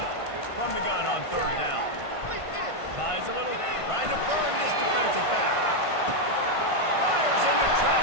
From the gun on third down. Buys a little, trying to burn this defensive back. Fires into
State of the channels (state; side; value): late; right; 1.5 ms